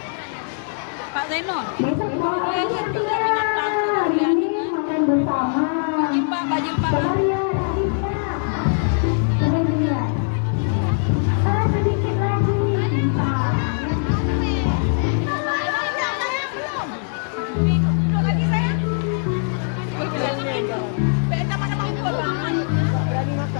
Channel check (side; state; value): right; silent; 65 dB below the other